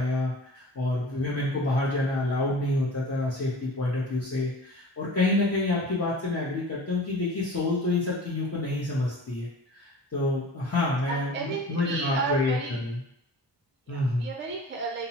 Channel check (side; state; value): both; normal; correlation 0.42